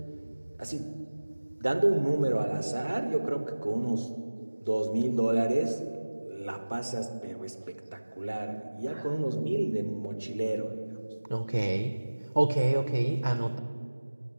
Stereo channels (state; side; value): inverted; both; correlation -1.00